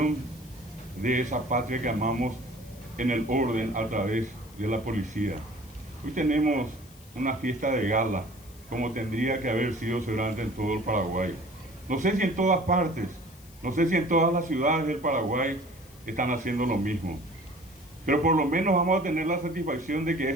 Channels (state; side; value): noise; left; hiss, 24 dB below the sound